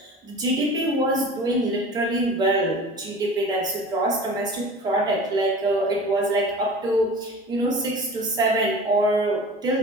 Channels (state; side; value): normal; both; correlation 0.39